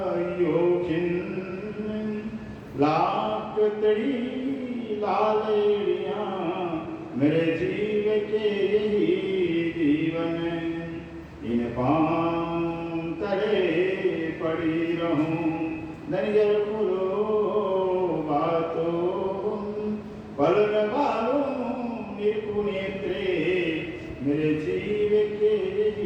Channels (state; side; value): identical; both; correlation 1.00